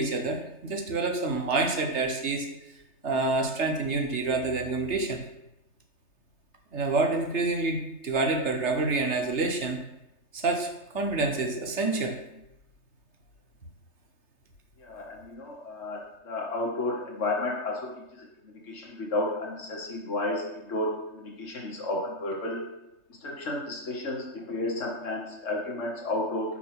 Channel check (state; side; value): late; right; 3.3 ms